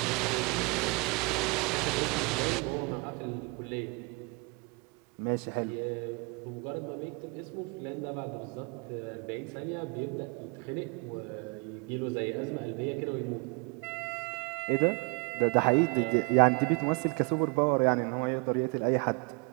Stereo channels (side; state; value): left; quieter; 30.4 dB